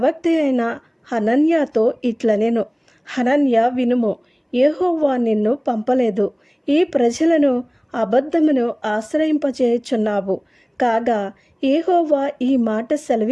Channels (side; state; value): both; identical; correlation 1.00